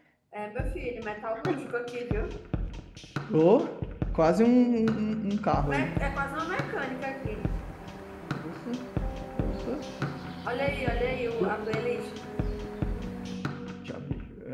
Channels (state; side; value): identical; both; correlation 1.00